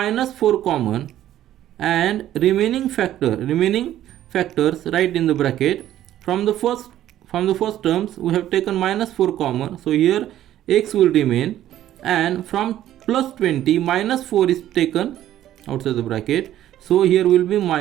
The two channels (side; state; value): left; quieter; 12.6 dB